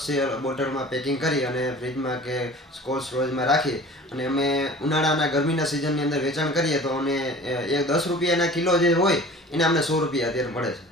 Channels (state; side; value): normal; both; correlation 0.43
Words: છે, બોટલમાં પેકિંગ કરી અને ફ્રીજમાં કે કોલ્ડ સ્ટોરેજમાં રાખી અને અમે ઉનાળાના ગરમીના સિઝનની અંદર વેચાણ કરીએ તો અમને એ 10 રૂપિયાના કિલો જે હોય એને અમને 100 રૂપિયા અત્યારે મળે છે.